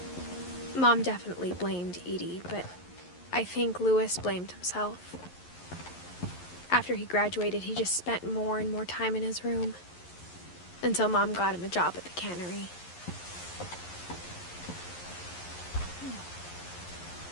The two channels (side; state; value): right; late; 11 ms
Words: Mom definitely blamed Edie, but I think Louis blamed himself. After he graduated, he just spent more and more time in his room, until Mom got him a job at the cannery.